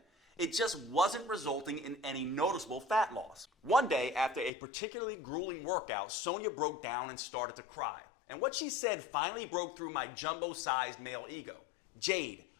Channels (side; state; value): right; drops out; at 4.5 s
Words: It just wasn't resulting in any noticeable fat loss. One day, after a particularly grueling workout, Sonia broke down and started to cry. And what she said finally broke through my jumbo-sized male ego. "Jade,